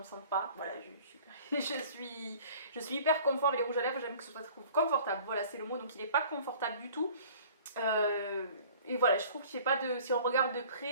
sente pas, voilà, je suis hyper confort avec les rouges à lèvres, j'aime que ce soit confortable, voilà c'est le mot, donc il est pas confortable du tout. Et voilà, je trouve qu'il fait pas de... Si on regarde de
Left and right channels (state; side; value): inverted; both; correlation -0.48